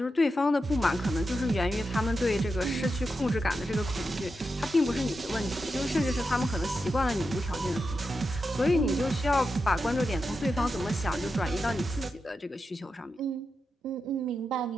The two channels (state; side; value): normal; both; correlation 0.88